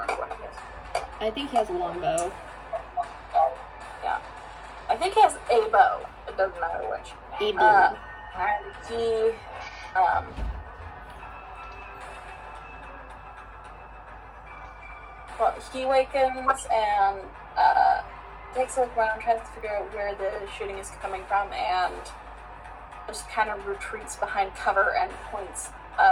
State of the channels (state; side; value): identical; both; correlation 1.00